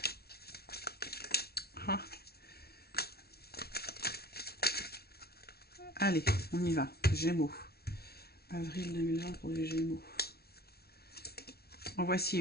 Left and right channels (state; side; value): late; right; 0.45 ms